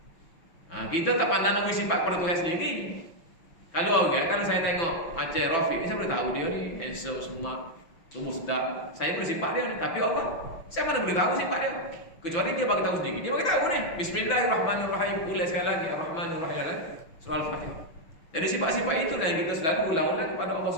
Kita tak pandang nama sifat pada Tuhan sendiri. Kalau saya tengok macam Rafiq ni, saya boleh tahu dia ni handsome semua, tubuh sedap. Saya boleh sifat dia ni, tapi Allah saya mana boleh tahu sifat dia. Kecuali dia bagi tahu sendiri. Dia bagi tahu ni. Bismillahirrahmanirrahim. Ulang sekali lagi Ar-Rahmanir-Rahim dalam surah Al-Fatihah. Jadi sifat-sifat itulah yang kita selalu ulang-ulang kepada Allah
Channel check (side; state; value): right; late; 6.0 ms